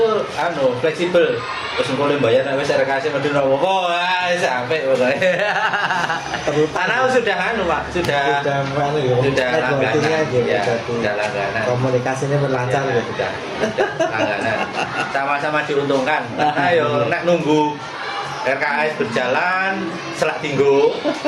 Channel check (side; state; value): both; identical; correlation 1.00